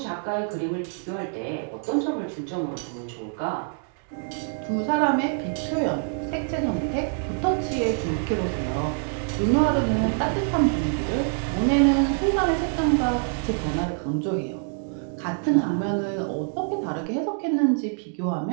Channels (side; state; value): left; silent; 56 dB below the other